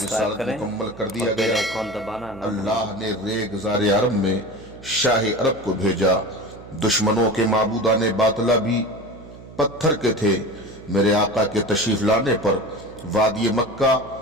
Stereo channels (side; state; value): right; noise; hum, 18 dB below the sound